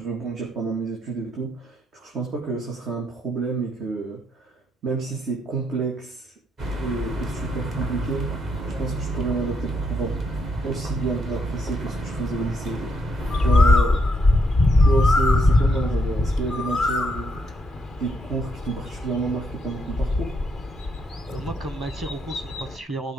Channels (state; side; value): normal; both; correlation 0.76